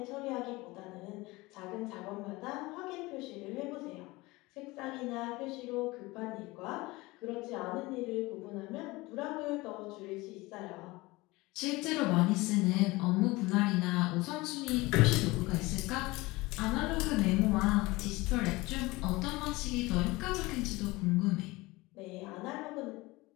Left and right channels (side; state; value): right; quieter; 21.7 dB